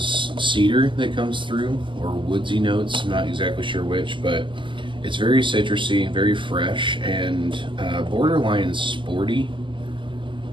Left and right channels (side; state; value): left; late; 0.24 ms